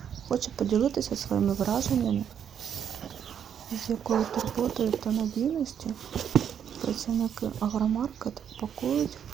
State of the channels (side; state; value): left; quieter; 8.5 dB